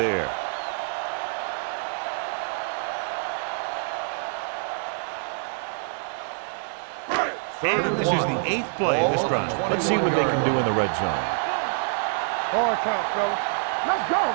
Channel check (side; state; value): left; silent; 61 dB below the other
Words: And this is the 8th play of this drive. Let's see what they can do in the red zone. Here we come. Hard count, fellas. Let's go.